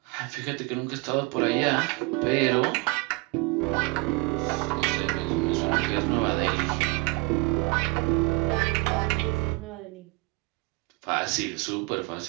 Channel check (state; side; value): quieter; left; 25.0 dB